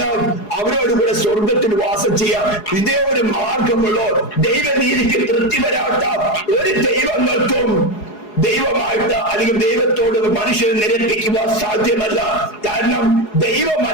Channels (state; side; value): late; right; 4.8 ms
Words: അവരോട് കൂടെ സ്വർഗത്തിൽ വാസം ചെയ്യാം. ഇതേ ഒരു മാർഗമുള്ളൂ. ദൈവനീതിക്ക് തൃപ്തി വരാത്ത ഒരു ദൈവങ്ങൾക്കും ദൈവമായിട്ട് അല്ലെങ്കിൽ ദൈവത്തോട് മനുഷ്യനെ നിരപ്പിക്കുക സാധ്യമല്ല. കാരണം